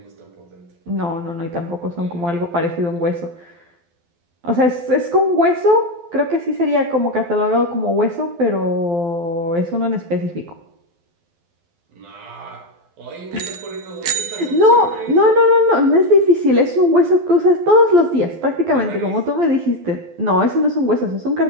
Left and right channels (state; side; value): late; left; 12 ms